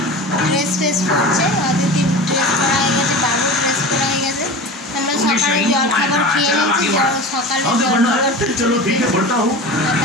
ড্রেস পরছে, অদিতি ড্রেস পরা হয়ে গেছে, বাবু ড্রেস পরা হয়ে গেছে। আমরা সকালে জলখাবার খেয়ে নিয়েছি, সকালে জলখাবার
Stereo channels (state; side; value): normal; both; correlation 0.33